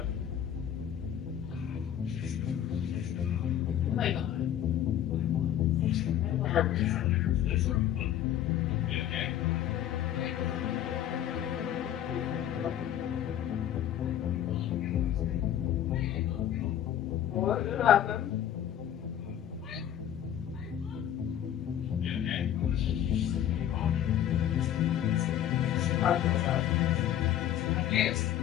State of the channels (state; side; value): quieter; right; 10.8 dB